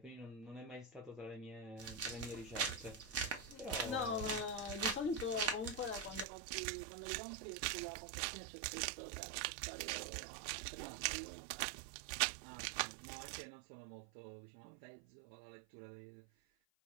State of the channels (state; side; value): drops out; left; at 6.2 s